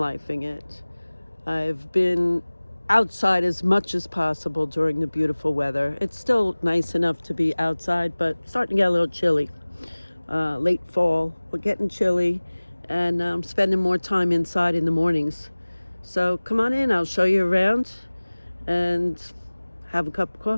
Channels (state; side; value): inverted; both; correlation -1.00